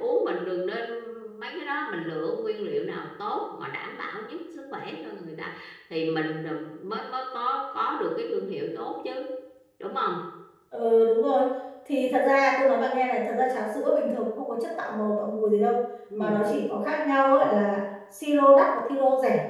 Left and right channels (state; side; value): identical; both; correlation 1.00